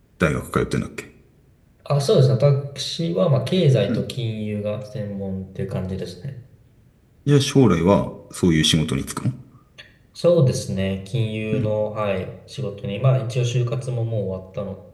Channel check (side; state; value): both; identical; correlation 1.00